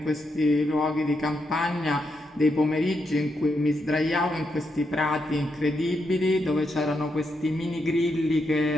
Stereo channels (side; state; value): both; normal; correlation 0.82